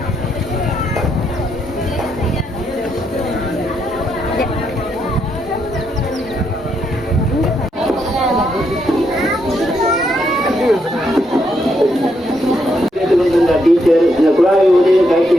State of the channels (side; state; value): both; normal; correlation 0.78